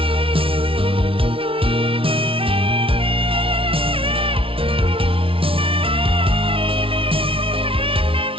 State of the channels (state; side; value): late; left; 0.26 ms